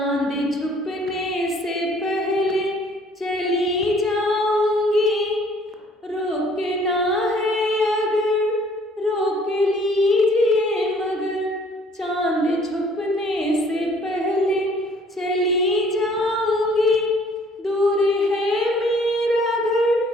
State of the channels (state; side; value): normal; both; correlation 0.58